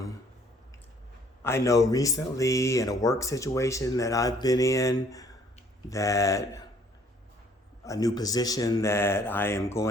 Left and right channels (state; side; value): normal; both; correlation 0.61